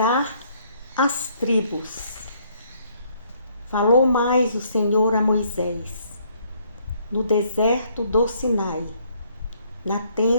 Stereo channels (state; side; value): inverted; both; correlation -0.66